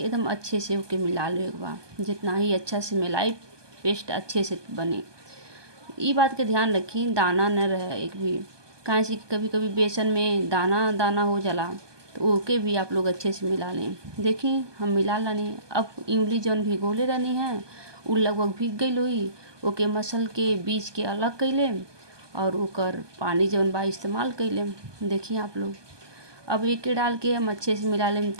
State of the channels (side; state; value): left; late; 1.2 ms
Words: अच्छे से होके मिला ले एक बार। जितना ही अच्छा से मिलाई पेस्ट अच्छे से बने। ये बात के ध्यान रखी दाना न रहे एक भी, काहे से कभी कभी बेसन में दाना दाना हो जाला, तो ओके भी आप लोग अच्छे से मिला लें। देखी हम मिला लानी। अब इमली जौन भिगोले रहनी है उ लगभग भीग गई हुई, ओके मसल के बीज के अलग कैले और ओकर पानी जौन बा इस्तेमाल कैले। देखिए आप लोग अब एक डाल के हम अच्छे से मिला लें